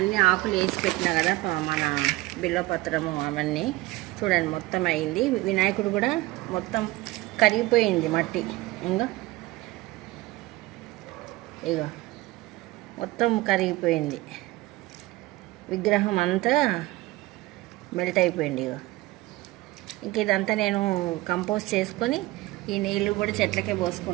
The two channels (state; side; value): quieter; left; 19.4 dB